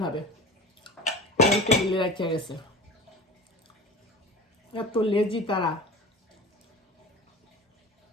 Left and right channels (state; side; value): normal; both; correlation 0.37